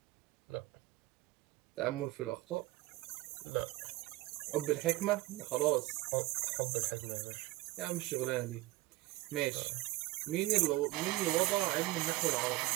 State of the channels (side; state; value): left; quieter; 19.2 dB